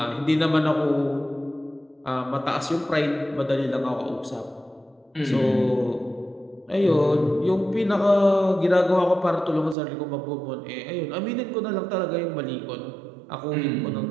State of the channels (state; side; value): drops out; left; at 9.8 s